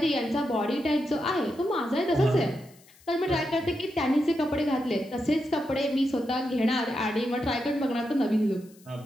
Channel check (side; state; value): left; noise; hiss, 27 dB below the sound